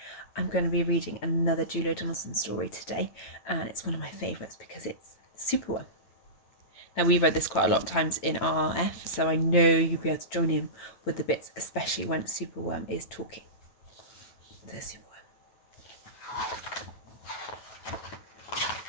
I'm going to be reading another Julia Donaldson story today, and it's one of my favourites because it's Superworm. Now, we've read this quite a lot of times in RRF, so I know you'll be able to join in with the bits, especially when Superworm is talking. There's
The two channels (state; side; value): late; right; 9.0 ms